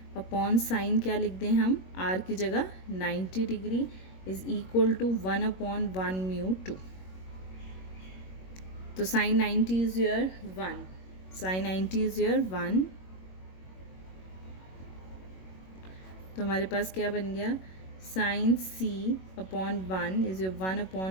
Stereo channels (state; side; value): late; right; 21 ms